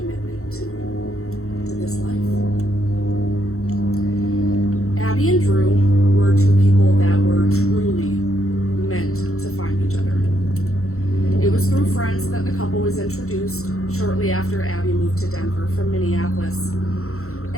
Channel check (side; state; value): right; late; 0.63 ms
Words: to this life. Abby and Drew were two people that were truly meant to find each other. It was through friends that the couple was introduced shortly after Abby moved to Denver from Minneapolis.